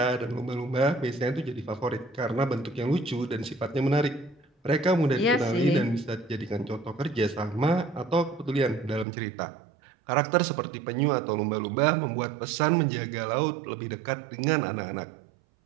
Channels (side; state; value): left; drops out; at 9.1 s